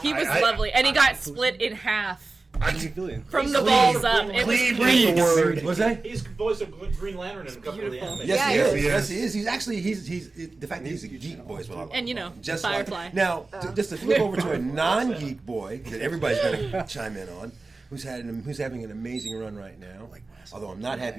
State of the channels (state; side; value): quieter; left; 3.5 dB